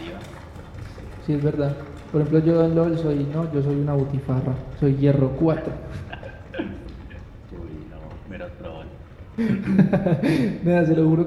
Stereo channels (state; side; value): identical; both; correlation 1.00